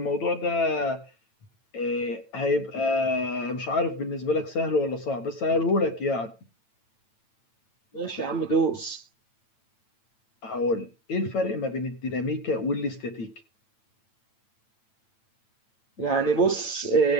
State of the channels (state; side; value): late; right; 9.0 ms